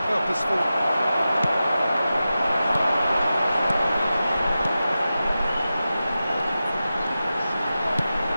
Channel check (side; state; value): both; inverted; correlation -0.93